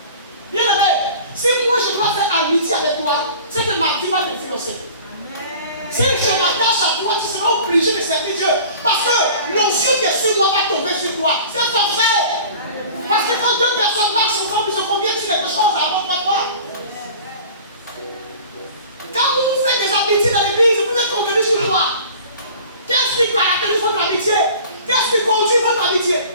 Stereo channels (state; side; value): inverted; both; correlation -0.43